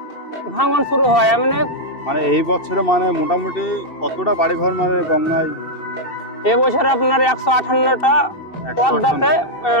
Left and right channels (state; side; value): late; right; 2.7 ms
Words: ভাঙন শুরু হয়। মানে এই বছরে মানে মোটামুটি কতটা বাড়ি ঘর মানে গঙ্গায়? এবছর আপনার 158টা পদ্মাতে